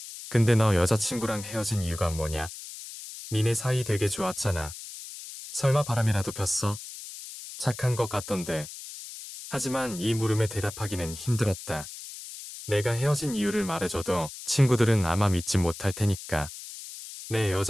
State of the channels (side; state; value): left; noise; hiss, 12 dB below the sound